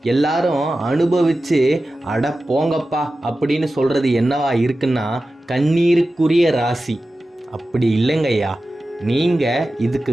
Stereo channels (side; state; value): both; normal; correlation 0.94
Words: எல்லாரும் அனுபவித்து அட போங்கப்பா அப்படின்னு சொல்கிறது என்னவா இருக்குன்னா கண்ணீருக்குரிய ராசி. அப்படி இல்லைங்கய்யா, நீங்கள்